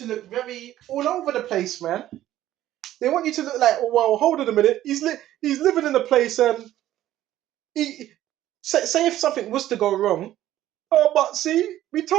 look very all over the place, man. They want you to look like, oh well, hold on a minute. He's living in a place and he say if something was to go wrong. Oh, but see, we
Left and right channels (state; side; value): quieter; left; 13.4 dB